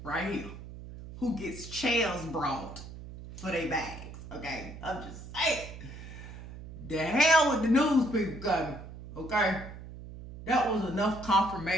right here who gets chairs brought for their bags, okay? I'm just saying. The hell with the news people coming, okay? That was enough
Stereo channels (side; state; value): right; noise; hum, 13 dB below the sound